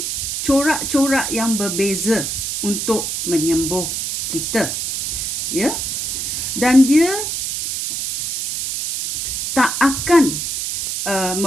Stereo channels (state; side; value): noise; right; hiss, 3 dB below the sound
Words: corak-corak yang berbeza untuk menyembuh kita. Ya. Dan dia tak akan